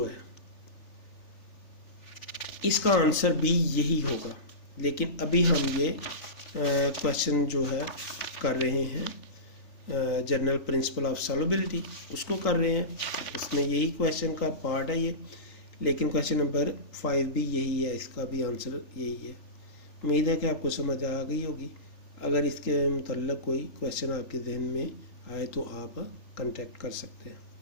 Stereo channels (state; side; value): late; right; 3.4 ms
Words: है इसका आंसर भी यही होगा। लेकिन अभी हम ये क्वेश्चन जो है कर रहे हैं जनरल प्रिंसिपल ऑफ सॉल्युबिलिटी, उसको कर रहे हैं। इसमें यही क्वेश्चन का पार्ट है ये, लेकिन क्वेश्चन नंबर 5 भी यही है, इसका भी आंसर यही है। उम्मीद है कि आपको समझ आ गई होगी। अगर इसके मुतल्लिक़ कोई क्वेश्चन आपके जहन में आए तो आप कांटेक्ट कर सकते हैं।